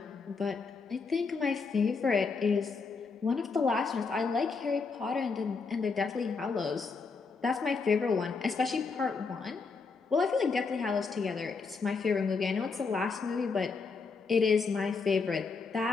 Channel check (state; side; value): quieter; right; 4.7 dB